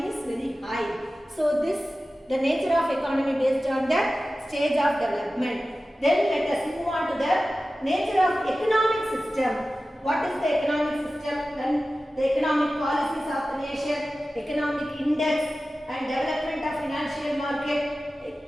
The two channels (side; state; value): both; normal; correlation 0.95